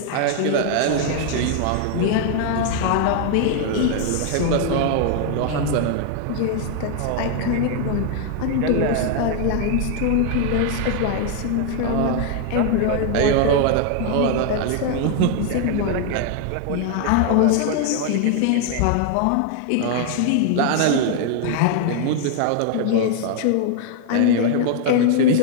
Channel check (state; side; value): different; both; correlation 0.00